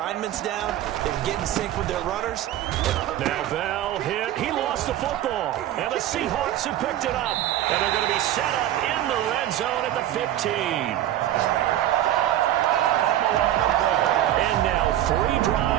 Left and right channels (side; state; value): left; quieter; 12.7 dB